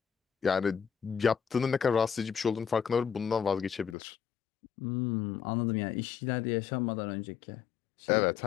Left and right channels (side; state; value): right; drops out; at 4.0 s